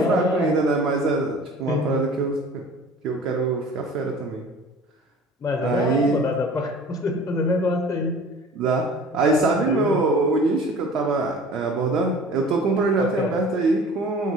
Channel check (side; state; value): both; normal; correlation 0.44